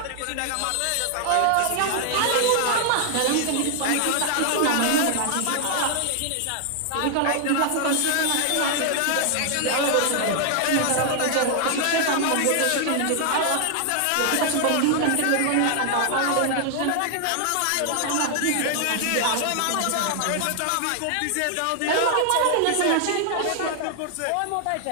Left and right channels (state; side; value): different; both; correlation 0.00